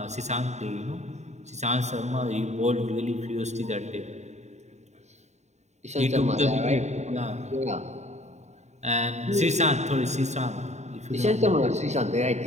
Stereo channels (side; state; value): left; late; 0.33 ms